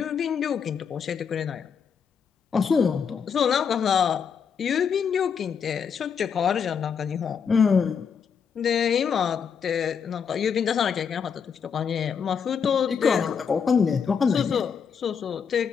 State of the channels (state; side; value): quieter; right; 6.8 dB